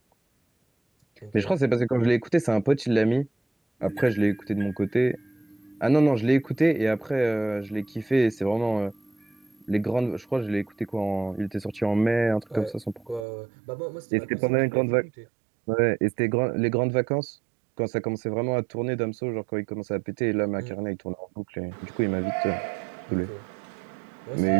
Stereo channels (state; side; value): drops out; left; at 13.2 s